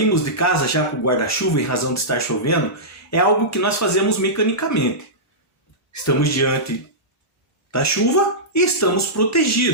de casa já com o guarda-chuva em razão de estar chovendo, é algo que nós fazemos mecanicamente. Estamos diante da chuva e estamos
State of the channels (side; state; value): both; normal; correlation -0.15